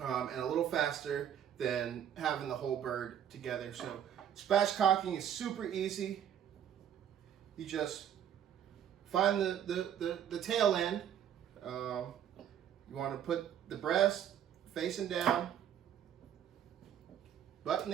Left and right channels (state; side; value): quieter; left; 9.7 dB